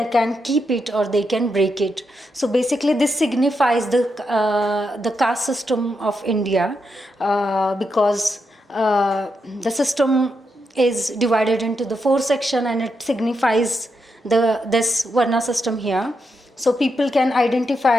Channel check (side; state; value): both; normal; correlation 0.83